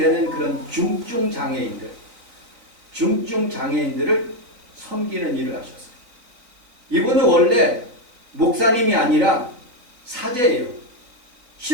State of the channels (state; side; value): late; left; 4.0 ms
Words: 그런 중증 장애인들을 섬기는 일을 하셨어요. 이분은 원래 목사님이 아니라 사제예요.